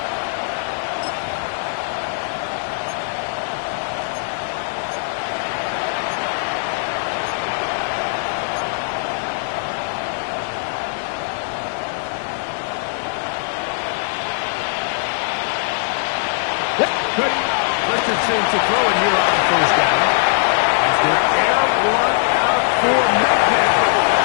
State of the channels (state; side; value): silent; right; 64 dB below the other